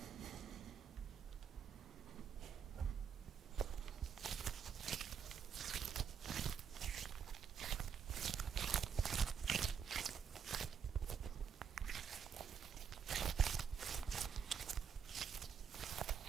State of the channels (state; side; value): quieter; left; 7.2 dB